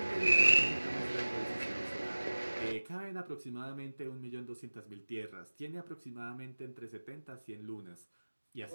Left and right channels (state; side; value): inverted; both; correlation -1.00